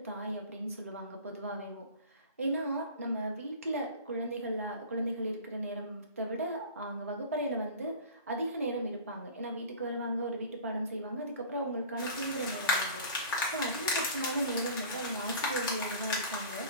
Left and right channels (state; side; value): inverted; both; correlation -0.40